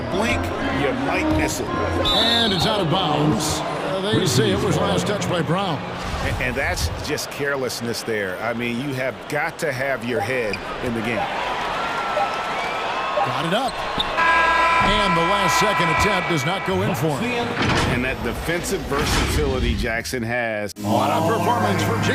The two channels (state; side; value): identical; both; correlation 1.00